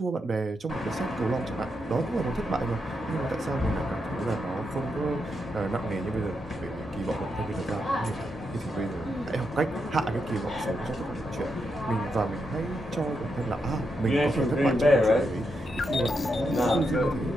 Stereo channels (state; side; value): normal; both; correlation 0.83